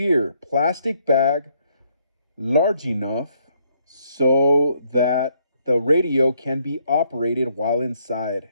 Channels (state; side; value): inverted; both; correlation -0.71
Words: plastic bag large enough so that the radio can be operated while inside.